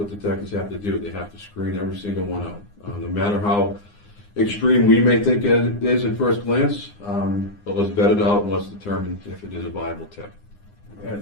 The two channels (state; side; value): late; right; 9.8 ms